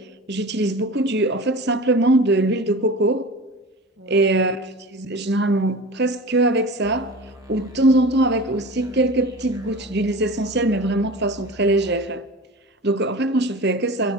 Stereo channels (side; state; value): both; normal; correlation 0.35